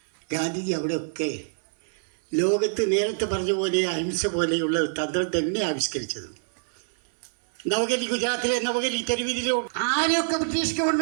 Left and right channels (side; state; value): left; silent; digital silence